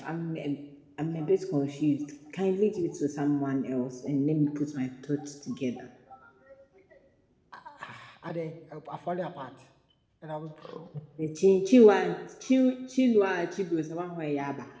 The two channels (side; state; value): both; identical; correlation 1.00